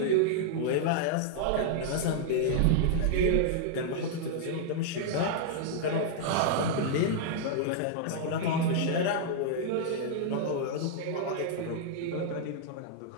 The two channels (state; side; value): different; both; correlation -0.01